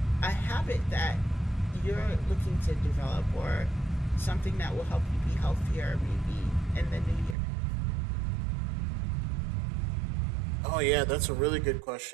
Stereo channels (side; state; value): left; drops out; at 7.4 s